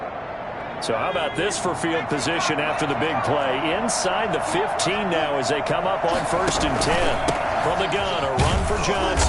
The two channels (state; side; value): identical; both; correlation 1.00